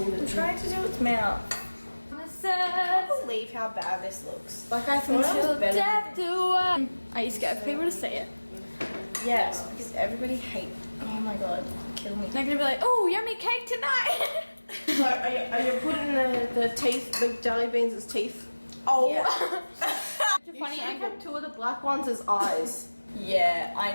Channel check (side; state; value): both; inverted; correlation -1.00